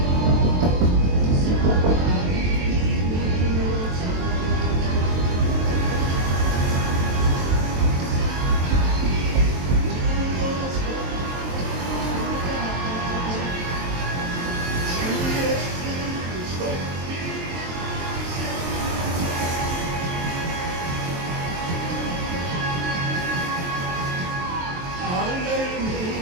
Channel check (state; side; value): late; left; 23 ms